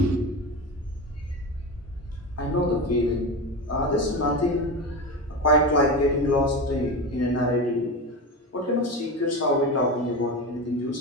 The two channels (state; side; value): normal; both; correlation 0.23